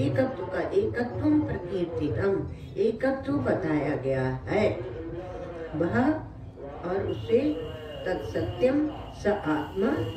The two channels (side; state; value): both; identical; correlation 1.00